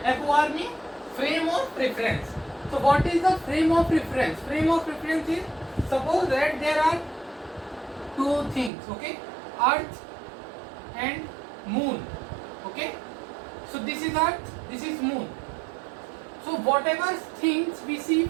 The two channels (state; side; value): drops out; left; at 8.7 s